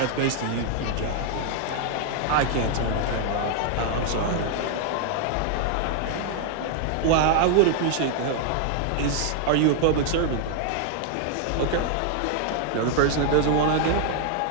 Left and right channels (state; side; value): different; both; correlation 0.00